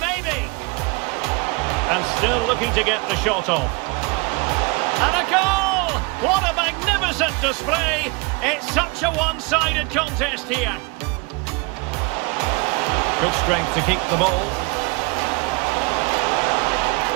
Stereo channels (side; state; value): left; quieter; 26.9 dB